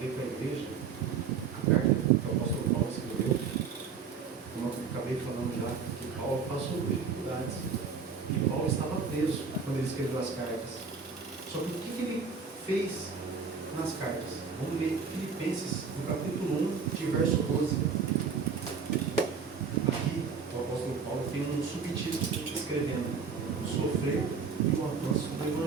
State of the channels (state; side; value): quieter; left; 5.7 dB